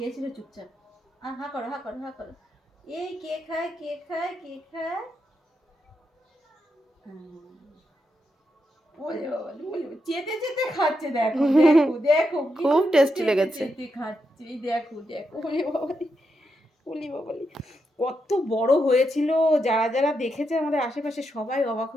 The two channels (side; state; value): both; normal; correlation 0.84